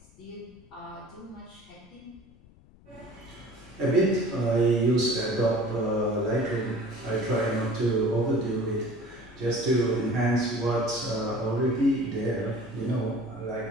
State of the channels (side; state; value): left; noise; rumble, 25 dB below the sound